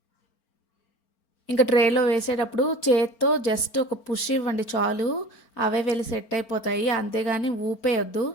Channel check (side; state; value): right; late; 4.4 ms